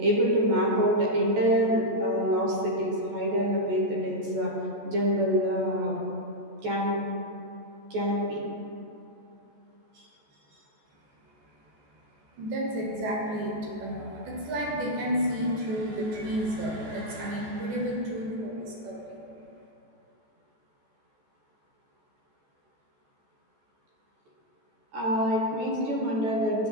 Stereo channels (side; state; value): left; late; 14 ms